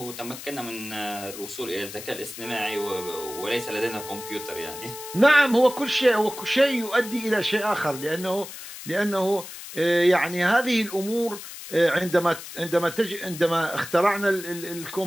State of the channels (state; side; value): noise; left; hiss, 12 dB below the sound